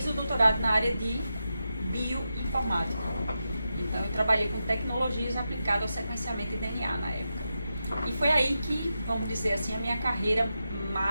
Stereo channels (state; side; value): inverted; both; correlation -0.89